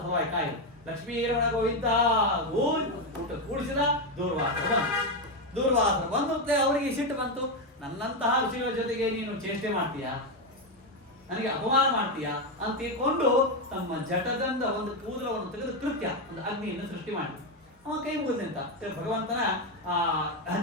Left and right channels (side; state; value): both; normal; correlation 0.07